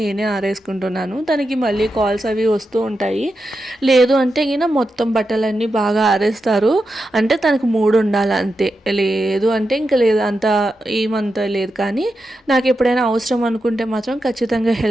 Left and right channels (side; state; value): both; normal; correlation 0.88